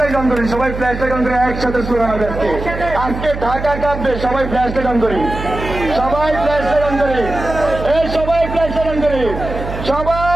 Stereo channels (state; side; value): noise; right; hum, 8 dB below the sound